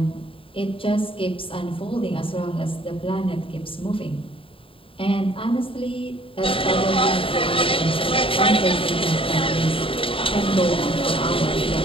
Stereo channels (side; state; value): right; late; 0.26 ms